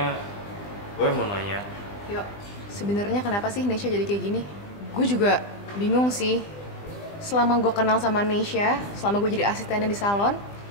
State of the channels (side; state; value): right; late; 20 ms